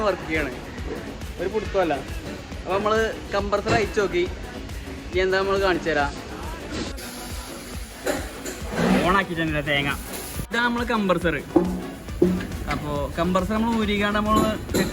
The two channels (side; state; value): both; identical; correlation 1.00